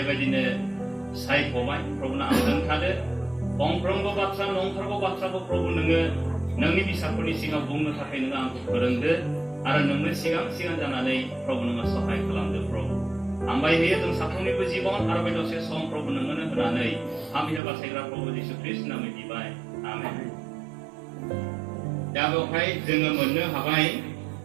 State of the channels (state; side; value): drops out; left; at 17.6 s